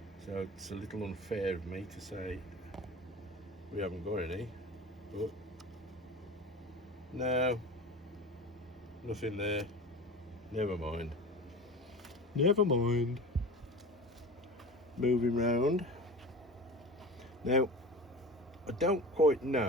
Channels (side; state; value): both; normal; correlation 0.34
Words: so it's a little unfair of me to say we haven't got any. But no, nothing there. Never mind. Never mind. Moving round. Now, I don't quite